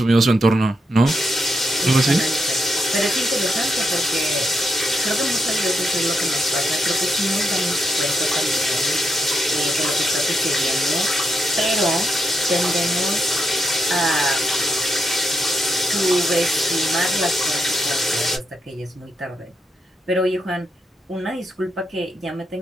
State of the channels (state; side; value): normal; both; correlation 0.82